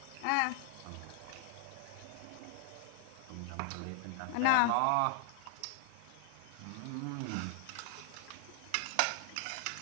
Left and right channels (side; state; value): both; different; correlation 0.00